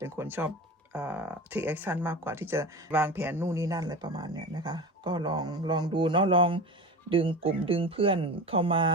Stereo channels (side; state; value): both; normal; correlation 0.29